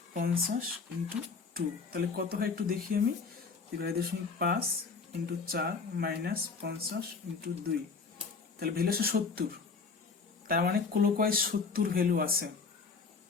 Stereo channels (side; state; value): right; quieter; 4.9 dB